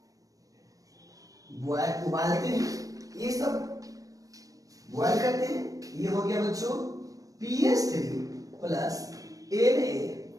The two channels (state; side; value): late; left; 0.17 ms